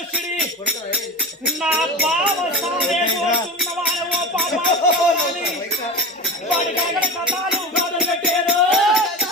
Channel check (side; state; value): both; normal; correlation 0.28